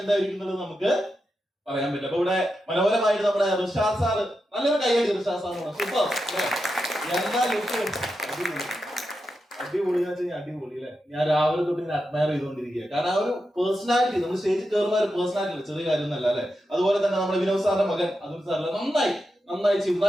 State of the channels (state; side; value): normal; both; correlation 0.88